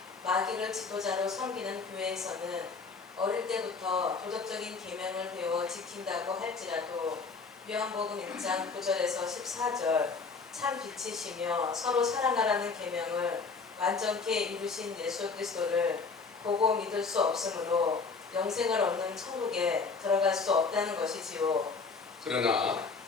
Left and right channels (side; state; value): right; quieter; 4.7 dB